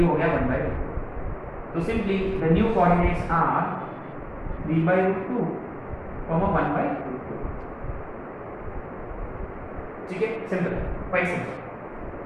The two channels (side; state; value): both; identical; correlation 1.00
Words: हो गया 1/√2। तो simply the new coordinates are 3/√2, 1/√2, ठीक है। Simple, quite simple.